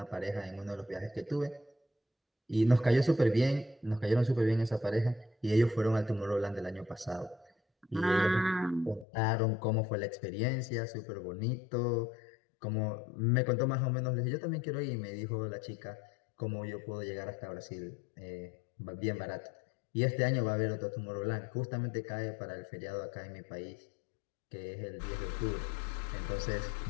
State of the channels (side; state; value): right; drops out; at 9.1 s